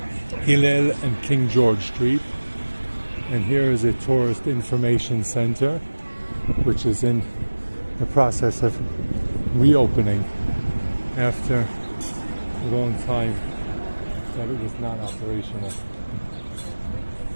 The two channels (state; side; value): inverted; both; correlation -1.00